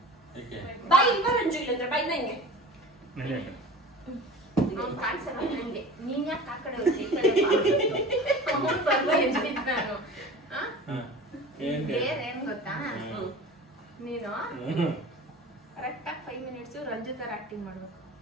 ಏಕೆ? ಬಾಯ್ ಇಲ್ಲ ರಂಜು ಇಲ್ಲ ಬೈ ನಂಗೆ. ನಡಿ. ಅವ್ನು ಕಾಣಿಸಲ್ಲ ನಂಗೆ. ನೀನ್ ಯಾಕೆ ಆ ಕಡೆ ಹೋಗ್ತಿ? ಈ ಕಡೆ ಬಾ. ಅವ್ನು ಬರ್ಲಿ ಅಂತಿದ್ದೆ ನಾನು. ಏನ್ ಗೊತ್ತಾ, ನೀನು ಕರೆಕ್ಟಾಗಿ 5 ಮಿನಿಟ್ಸ್ ರಂಜು ತರ ಆಕ್ಟಿಂಗ್ ಮಾಡ್ಬೇಕು.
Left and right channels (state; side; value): normal; both; correlation 0.38